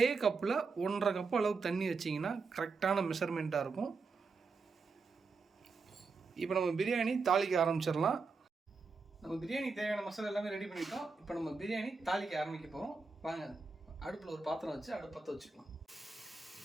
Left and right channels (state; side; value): quieter; left; 4.5 dB